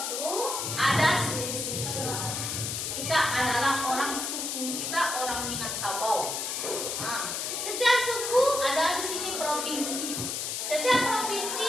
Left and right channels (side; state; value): left; noise; hiss, 3 dB below the sound